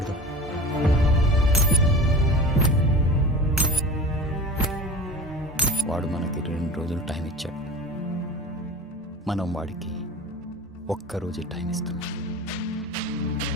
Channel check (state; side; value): normal; both; correlation 0.36